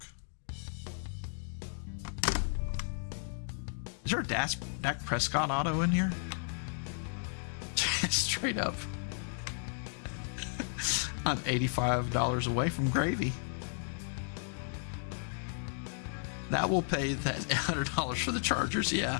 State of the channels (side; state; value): right; silent; digital silence